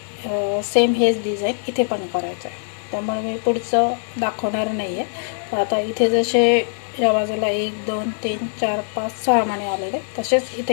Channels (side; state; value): right; silent; digital silence